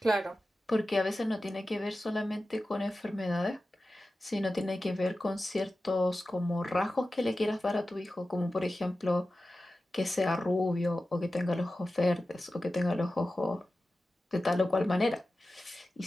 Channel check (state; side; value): normal; both; correlation 0.94